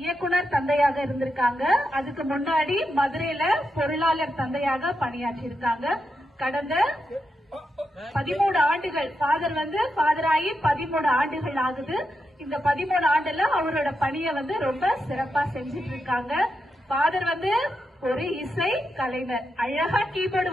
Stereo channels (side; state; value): both; normal; correlation 0.86